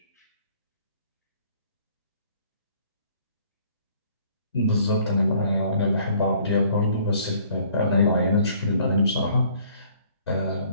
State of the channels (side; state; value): both; inverted; correlation -0.59